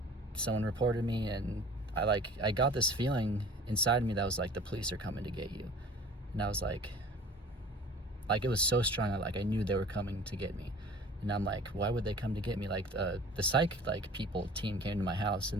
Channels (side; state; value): both; normal; correlation 0.45